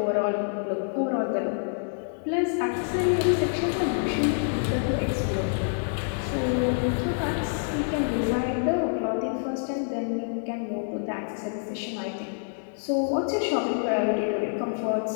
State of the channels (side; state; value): right; silent; digital silence